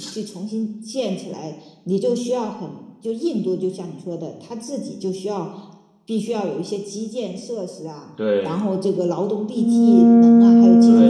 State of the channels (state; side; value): identical; both; correlation 1.00